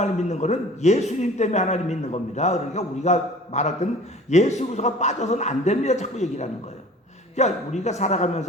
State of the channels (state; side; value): normal; both; correlation 0.45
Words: 믿는 거는 예수님 때문에 하나님 믿는 겁니다. 그러니까 우리가 말할 때는 예수 그리스도가 빠져서는 안 됩니다. 자꾸 얘기를 하는 거예요. 그러니까 우리가